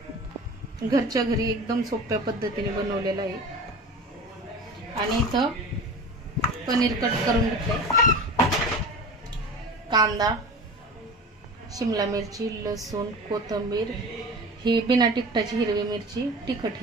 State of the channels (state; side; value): normal; both; correlation 0.35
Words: घरच्या घरी एकदम सोप्या पद्धतीने बनवलेलं आहे. आणि इथं पनीर कट करून घेतलंय, कांदा, शिमला मिरची, लसूण, कोथिंबीर, ही बिना तिखटाची हिरवी मिरची, तिखट